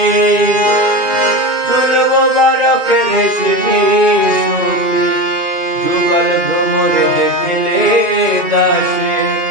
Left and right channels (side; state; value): left; late; 2.5 ms